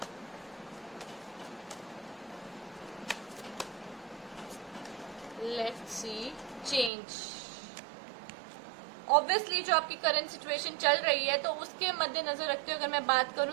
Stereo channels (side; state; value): left; drops out; at 6.9 s